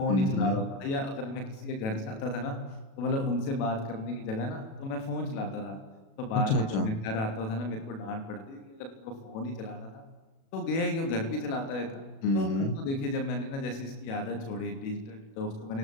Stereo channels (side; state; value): right; late; 36 ms